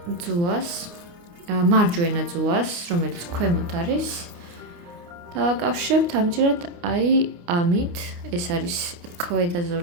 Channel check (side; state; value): left; late; 29 ms